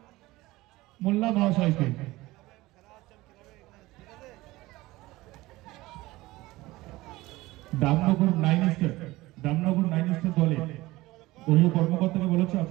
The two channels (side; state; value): left; quieter; 19.1 dB